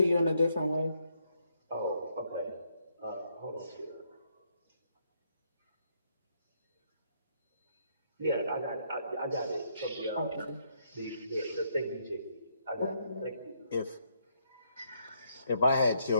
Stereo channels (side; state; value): both; inverted; correlation -0.74